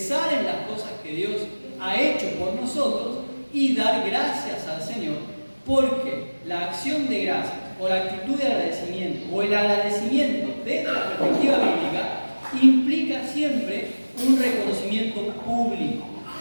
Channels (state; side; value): inverted; both; correlation -1.00